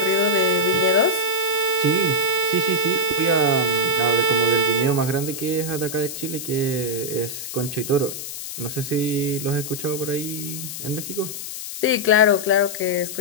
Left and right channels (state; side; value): noise; left; hiss, 8 dB below the sound